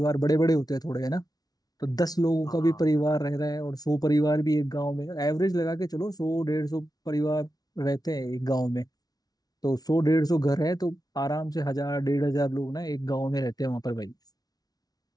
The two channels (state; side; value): late; right; 0.19 ms